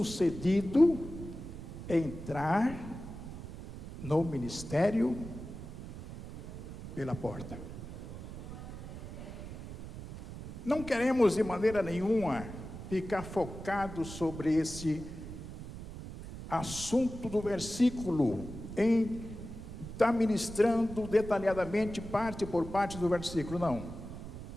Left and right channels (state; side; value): noise; right; rumble, 11 dB below the sound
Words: é entrar no ministério pela porta. Não queremos de maneira nenhuma ficar focados sobre esse assunto do versículo, em estar ministrando detalhadamente parte por parte do versículo, não.